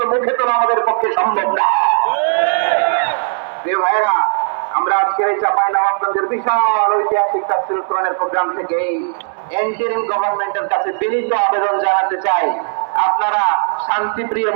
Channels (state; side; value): silent; left; 68 dB below the other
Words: মুখে তোলা আমাদের পক্ষে সম্ভব না। ভাইরা, আমরা আজকের এই চাঁপাইনবাবগঞ্জের বিশাল ঐতিহাসিক তাফসীরুল কোরআনের প্রোগ্রাম থেকে এই ইন্টারিম গভর্নমেন্টের কাছে বিনীত আবেদন জানাতে চাই, আপনারা শান্তিপ্রিয়